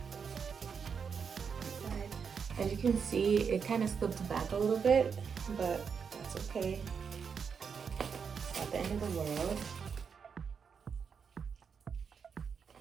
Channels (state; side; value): quieter; left; 6.3 dB